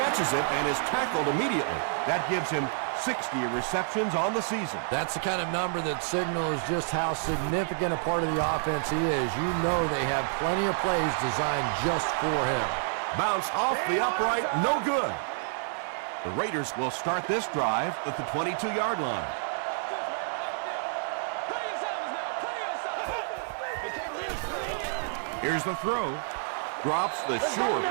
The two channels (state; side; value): silent; left; 57 dB below the other